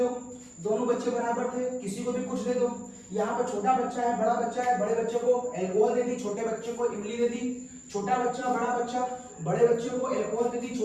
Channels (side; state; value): both; identical; correlation 1.00